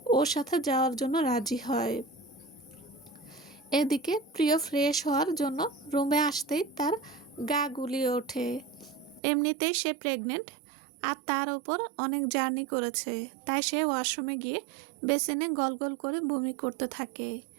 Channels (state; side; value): drops out; left; at 9.2 s